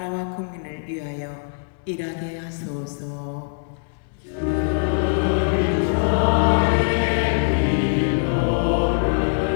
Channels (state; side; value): silent; right; 64 dB below the other